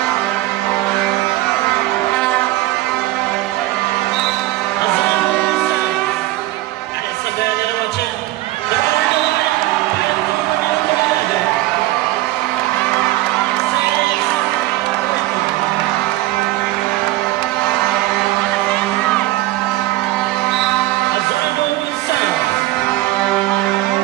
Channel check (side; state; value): left; quieter; 17.1 dB